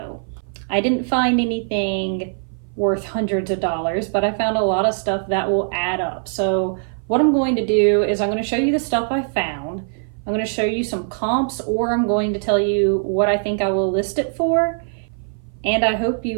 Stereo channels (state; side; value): silent; left; 57 dB below the other